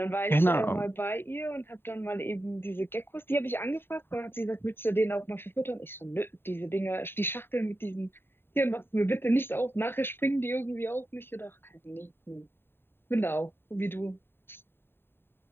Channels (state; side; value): late; right; 0.11 ms